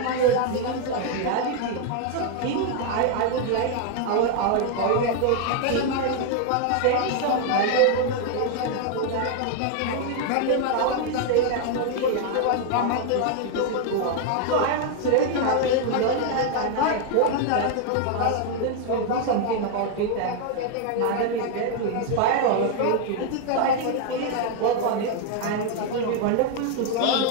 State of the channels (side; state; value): both; different; correlation 0.00